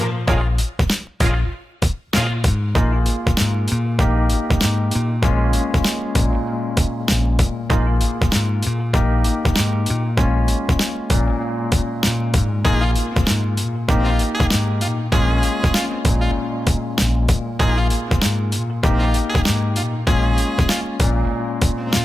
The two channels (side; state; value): both; normal; correlation 0.93